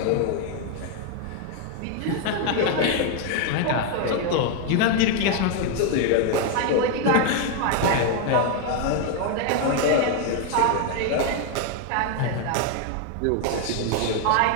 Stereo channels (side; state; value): both; different; correlation 0.01